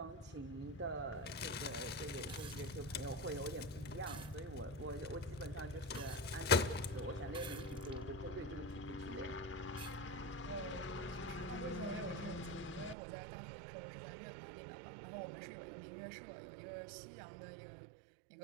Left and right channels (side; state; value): left; drops out; at 13.0 s